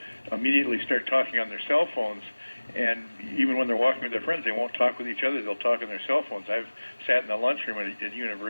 immediately start talking on their cell phones, and even when they're walking with their friends, they won't talk with each other. They'll talk on their cell phones. I've sat in the lunchroom at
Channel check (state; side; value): inverted; both; correlation -1.00